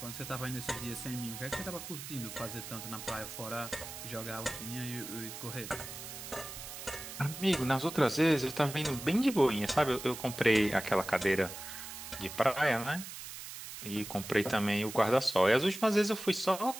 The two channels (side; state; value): right; noise; hiss, 10 dB below the sound